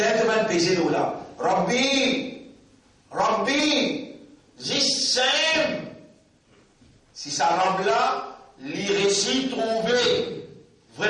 tu vas peser l'eau là. Rabbi, Zissem. Si ça Rabbi là, les récits trouvés,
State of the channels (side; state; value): both; identical; correlation 1.00